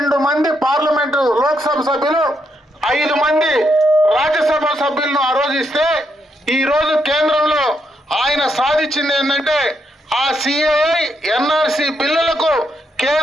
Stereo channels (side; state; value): both; normal; correlation 0.79